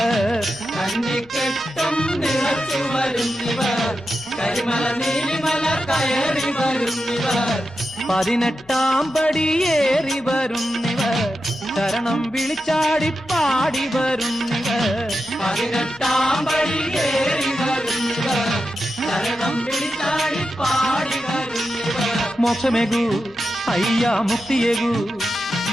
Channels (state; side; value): normal; both; correlation 0.89